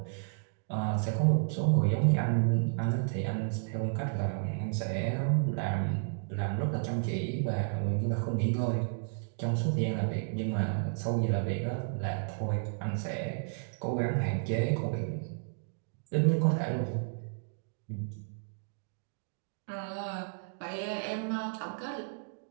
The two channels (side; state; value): left; silent; digital silence